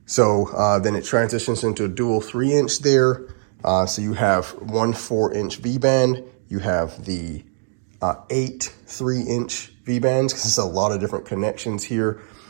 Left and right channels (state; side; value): silent; left; digital silence